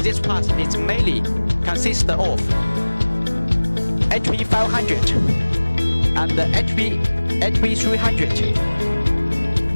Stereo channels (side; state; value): both; inverted; correlation -1.00